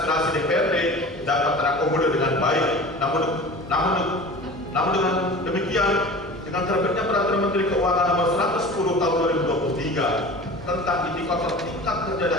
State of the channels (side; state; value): both; normal; correlation 0.38